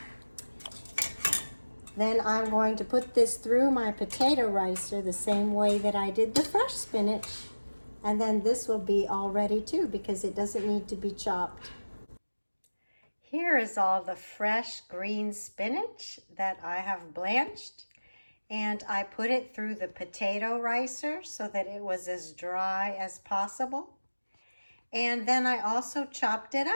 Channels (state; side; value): inverted; both; correlation -1.00